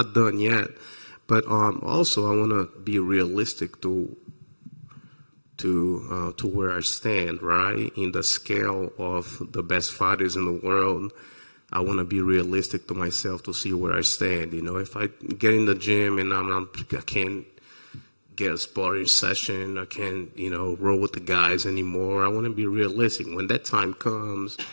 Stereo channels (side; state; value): both; inverted; correlation -1.00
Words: done yet, but also I want to be realistic to where I stand, right, in the scale of the best fighters in the world. I want to be realistic to myself to see where I stand. If I get in the gym and I can't get a sparring session, I can't, roll with the guys anymore. I want to be realistic. When that time comes,